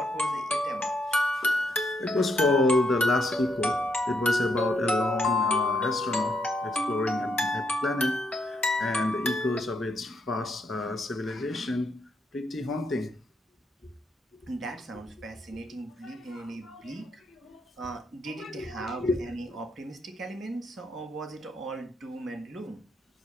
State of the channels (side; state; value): both; normal; correlation 0.78